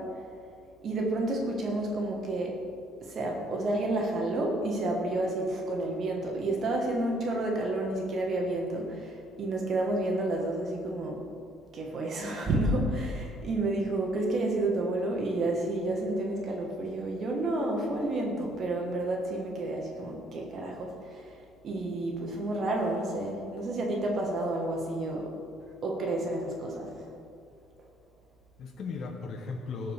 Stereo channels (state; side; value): normal; both; correlation 0.65